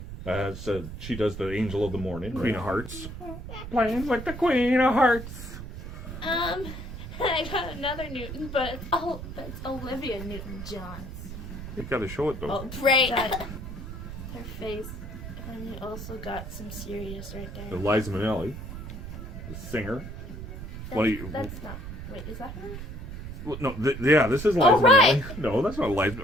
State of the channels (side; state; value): right; noise; rumble, 9 dB below the sound